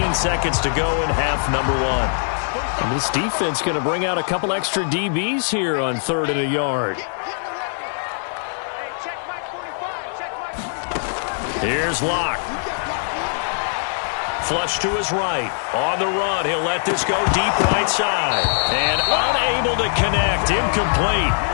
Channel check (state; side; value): silent; right; digital silence